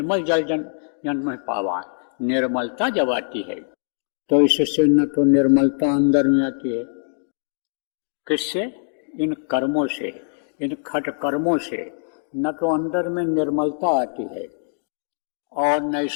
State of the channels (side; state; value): right; silent; digital silence